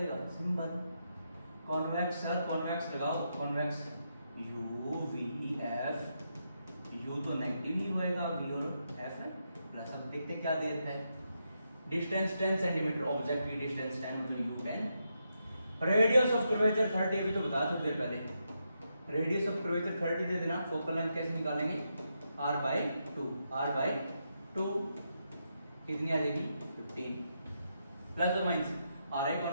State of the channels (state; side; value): inverted; both; correlation -0.82